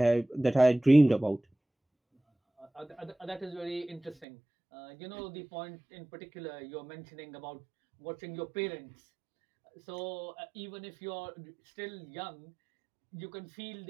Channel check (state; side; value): drops out; left; at 4.2 s